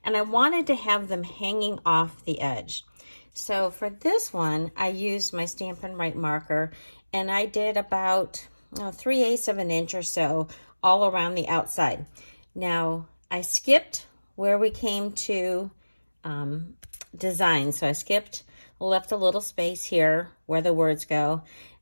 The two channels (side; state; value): both; inverted; correlation -1.00